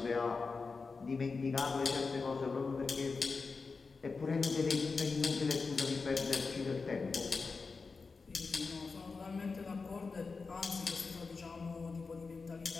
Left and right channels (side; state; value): right; quieter; 4.5 dB